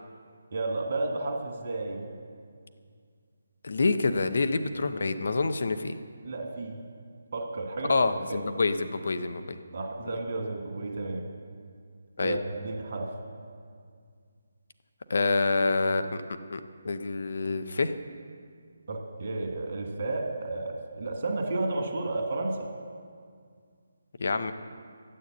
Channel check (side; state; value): both; inverted; correlation -0.89